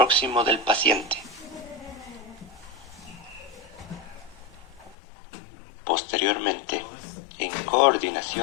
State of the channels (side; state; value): right; drops out; at 5.0 s